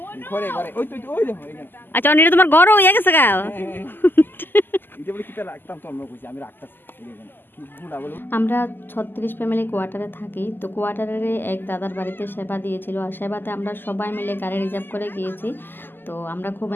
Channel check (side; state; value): right; late; 0.094 ms